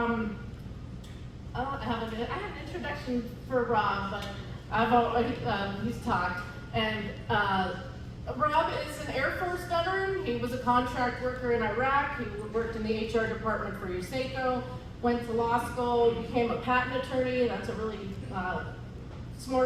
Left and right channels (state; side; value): identical; both; correlation 1.00